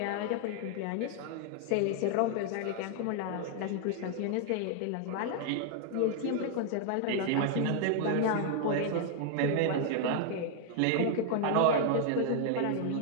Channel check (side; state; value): both; different; correlation 0.00